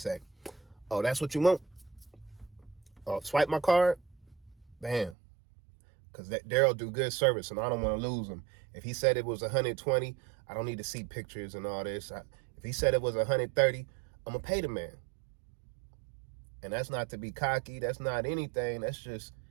oh, that's what you want? Oh, swipe my card? Bam. Because Daryl do good service, and I don't want to lose him. If he said it was 120, I don't need to see pictures and all this. If he said it was 130, I'm going to pay the man. And that's not to be cocky. That's not anything. That's just,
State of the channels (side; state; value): left; drops out; at 5.2 s